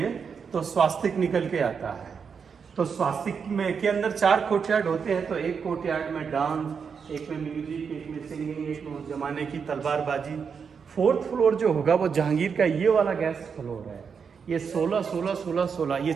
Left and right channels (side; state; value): left; quieter; 6.2 dB